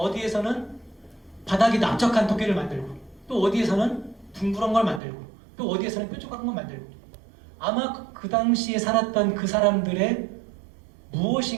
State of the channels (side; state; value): left; drops out; at 5.0 s